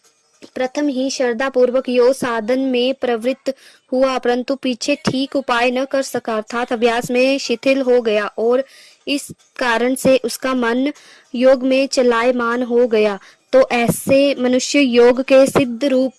प्रथम ही श्रद्धा पूर्वक योग साधन में प्रवृत्त हुआ, परंतु पीछे ठीक उपाय न कर सका, अर्थात अभ्यास में शिथिल हो गया और इस कारण से उसका मन योग में चलायमान हो गया। तो ऐसे मनुष्य योग के सिद्ध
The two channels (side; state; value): both; identical; correlation 1.00